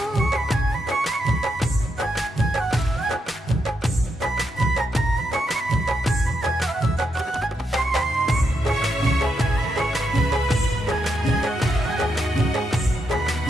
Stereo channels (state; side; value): normal; both; correlation 0.82